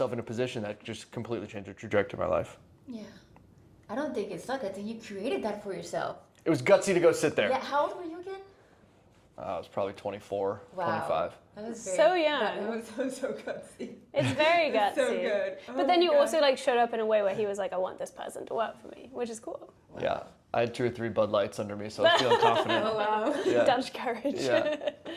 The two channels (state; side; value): identical; both; correlation 1.00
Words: in a position that just completely changed the trajectory of my life. Yeah. I don't think it's luck. I think you created that for yourself. It was gutsy to go sit there. Yeah. How old were you again? I was probably 24, Wow. 25. That was So young. That was so gutsy. It's very gutsy. So good. But then you also showed up in a way where he was I want this person to work for me, which is cool. Wow. Yeah. I had 2 or 3 Bud Lights under me, so I was feeling confident. Oh, wow. Yeah. Dutch courage. Yeah.